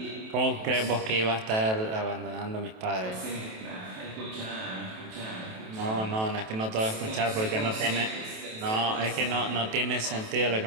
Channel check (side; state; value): left; late; 27 ms